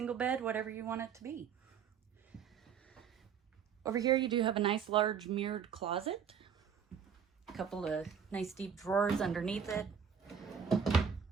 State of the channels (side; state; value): left; quieter; 7.3 dB